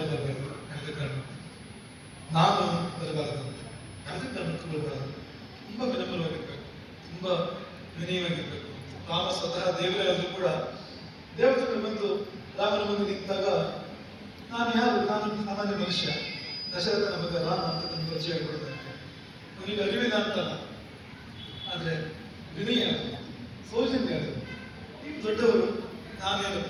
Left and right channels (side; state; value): both; identical; correlation 1.00